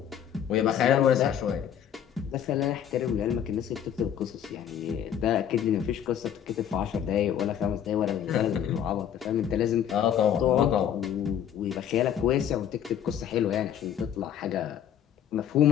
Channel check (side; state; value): right; quieter; 9.4 dB